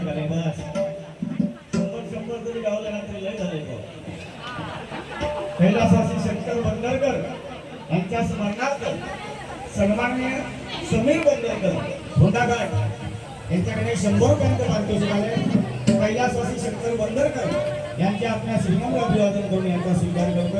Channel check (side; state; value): both; identical; correlation 1.00